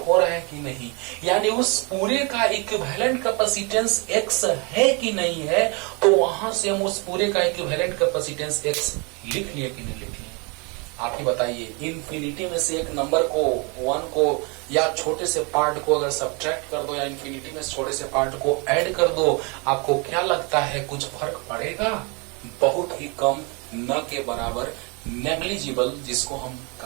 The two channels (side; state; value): left; quieter; 31.3 dB